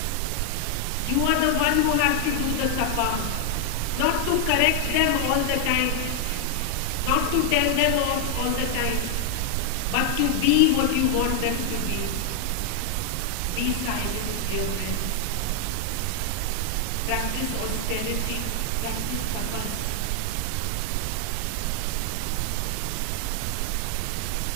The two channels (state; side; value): different; both; correlation 0.00